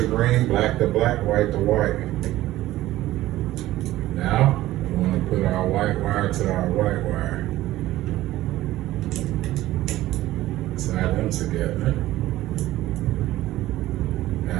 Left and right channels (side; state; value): left; quieter; 15.6 dB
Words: green, black to black, white to white. Now, we want to put our white wire to our white wire. Tie them together.